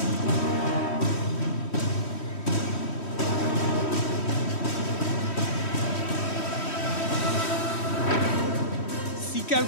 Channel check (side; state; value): right; late; 3.1 ms